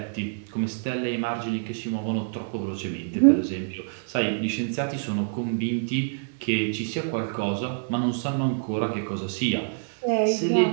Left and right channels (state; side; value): silent; left; digital silence